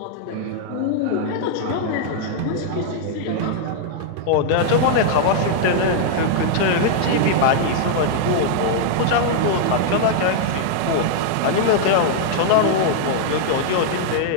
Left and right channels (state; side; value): different; both; correlation -0.01